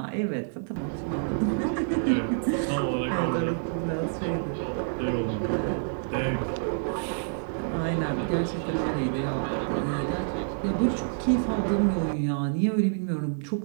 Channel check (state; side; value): silent; left; digital silence